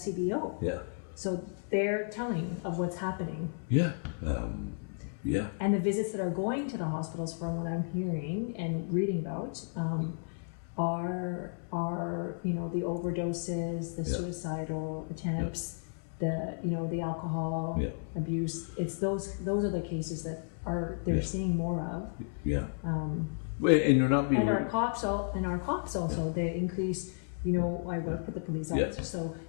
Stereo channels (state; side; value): silent; right; 56 dB below the other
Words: Yeah. So they're telling of what's happening. Yeah. Yeah. And the visits that are going to the hospitals, from what I'm hearing and reading about, are the overdoses, the suicidal attempts, the alcohol abuse. It's those are the cases that they're seeing more of. Yeah. And you're not being. And our cops also they increase. I work with the police officers, so